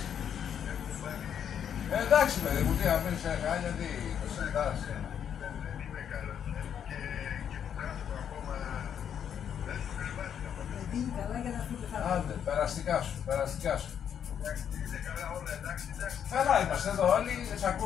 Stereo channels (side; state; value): right; quieter; 8.6 dB